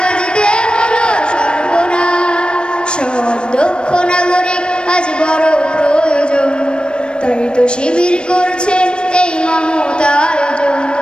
হলো সর্বনাশ। সৎ দক্ষ নাগরিক আজ বড় প্রয়োজন, তাই তো শিবির করছে এই মহৎ আয়োজন।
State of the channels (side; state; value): right; late; 0.054 ms